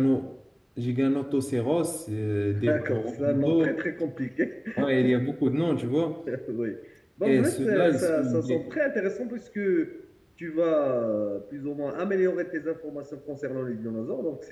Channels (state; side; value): identical; both; correlation 1.00